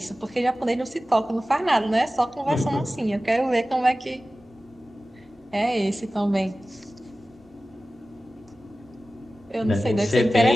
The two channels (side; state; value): both; normal; correlation 0.96